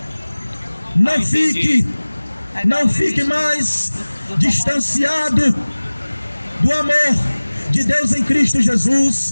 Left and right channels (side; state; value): both; inverted; correlation -1.00